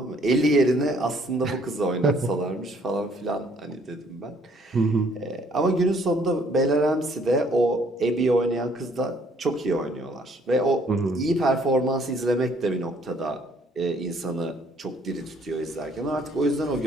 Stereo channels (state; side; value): normal; both; correlation 0.63